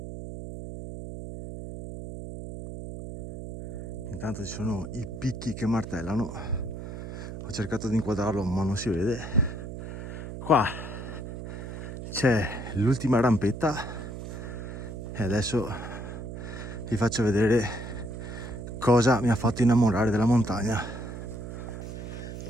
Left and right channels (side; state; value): right; noise; hum, 8 dB below the sound